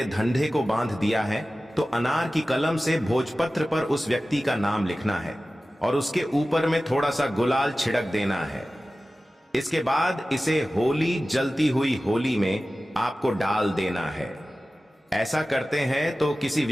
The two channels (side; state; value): both; normal; correlation 0.96